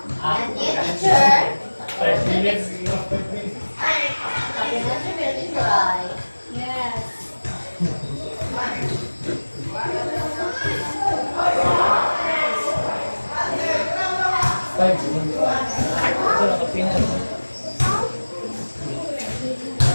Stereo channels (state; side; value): inverted; both; correlation -1.00